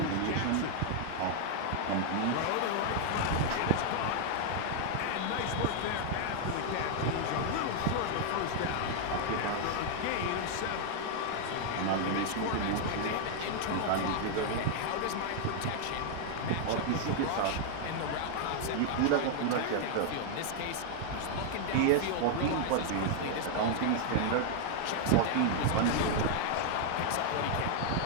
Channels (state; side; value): different; both; correlation 0.00